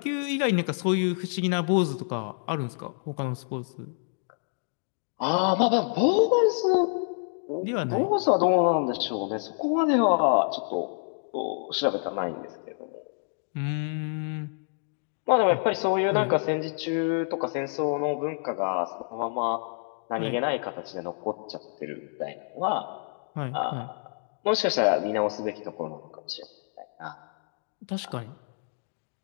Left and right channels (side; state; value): right; silent; digital silence